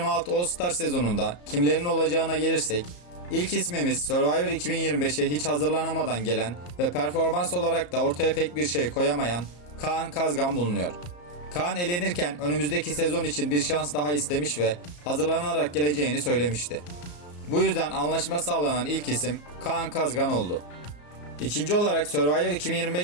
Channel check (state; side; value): late; right; 34 ms